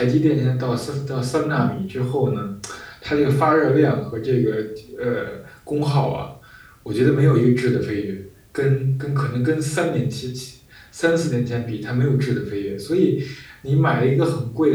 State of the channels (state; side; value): identical; both; correlation 1.00